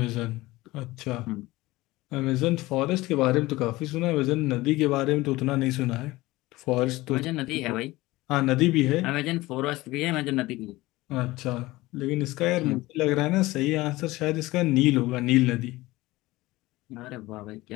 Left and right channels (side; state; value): right; quieter; 19.3 dB